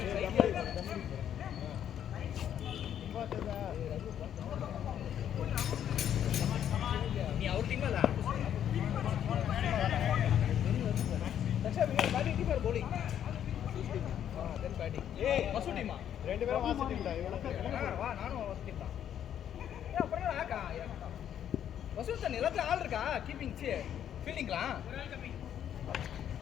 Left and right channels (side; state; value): right; quieter; 9.9 dB